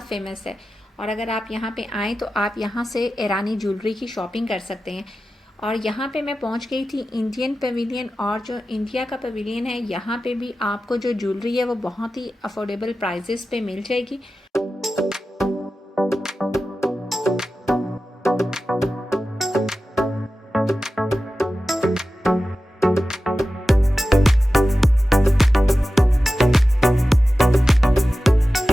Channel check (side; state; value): both; normal; correlation 0.94